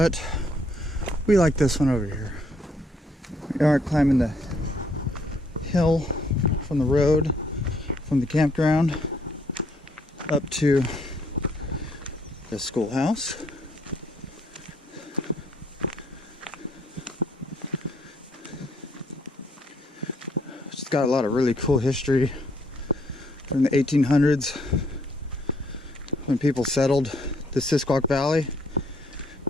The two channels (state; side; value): normal; both; correlation 0.68